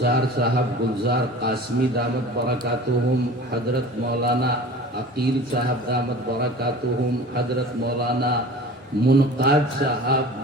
صاحب، گلزار قاسمی دامت برکاتہم، حضرت مولانا عقیل صاحب دامت برکاتہم، حضرت مولانا منقاد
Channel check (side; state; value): both; normal; correlation 0.40